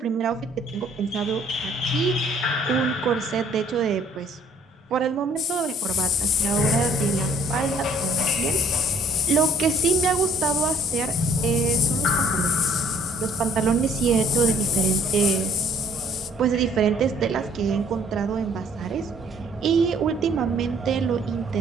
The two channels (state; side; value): normal; both; correlation 0.60